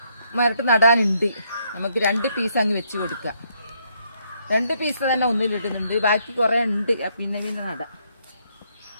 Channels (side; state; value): both; inverted; correlation -0.73